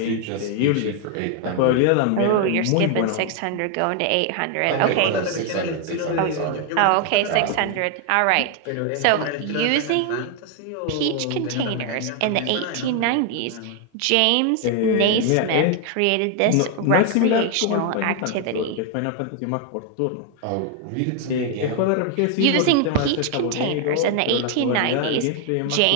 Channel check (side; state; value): both; different; correlation 0.00